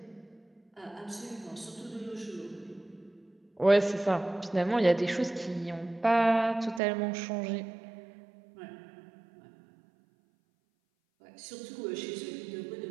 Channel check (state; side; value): drops out; left; at 6.8 s